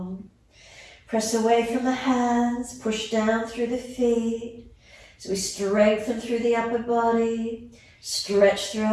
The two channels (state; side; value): identical; both; correlation 1.00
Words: Press away from the hands. Push down through the feet. So we strengthen through the upper body. Stretch through